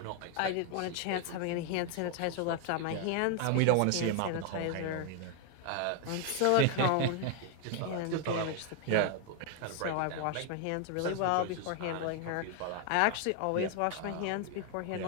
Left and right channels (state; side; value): different; both; correlation 0.00